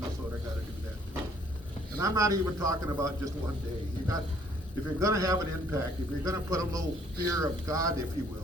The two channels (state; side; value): normal; both; correlation 0.62